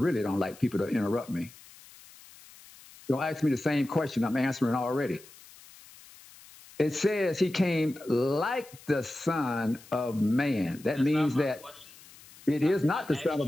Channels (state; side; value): noise; left; hiss, 22 dB below the sound